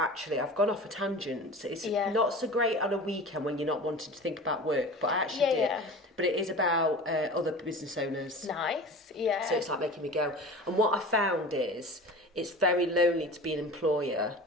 I've gone off a tangent. It's not so great on a weekend when you're not wanting to think about work, but I actually did. Yeah. But it is about other business owners. Nice, yeah. So it's like making me go. And what I found is it's very lonely to be an employer.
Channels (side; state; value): both; normal; correlation 0.36